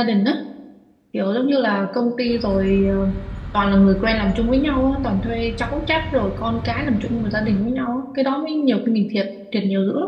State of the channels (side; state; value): both; identical; correlation 1.00